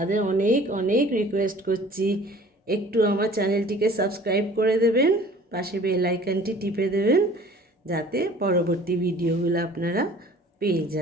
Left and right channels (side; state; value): both; normal; correlation 0.49